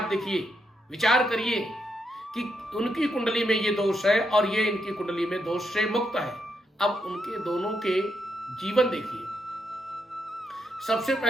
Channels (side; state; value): both; normal; correlation 0.81